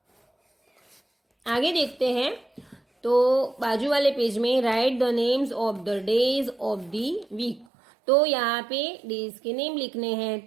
आगे देखते हैं। तो बाजू वाले पेज में write the names of the days of the week. तो यहाँ पे डेज के नेम लिखने हैं।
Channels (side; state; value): left; drops out; at 7.7 s